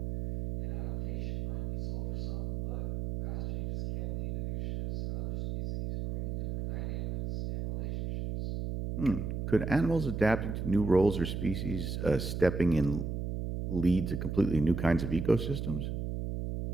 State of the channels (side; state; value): right; noise; hum, 2 dB below the sound